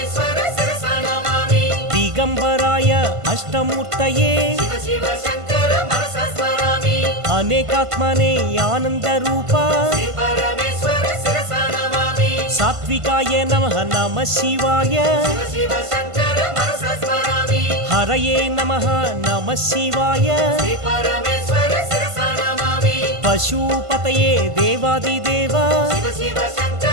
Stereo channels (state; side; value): late; left; 1.5 ms